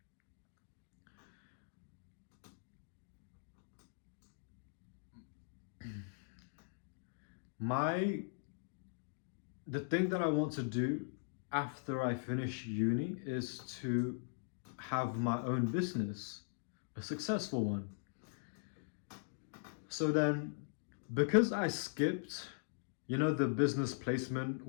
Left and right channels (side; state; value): right; silent; digital silence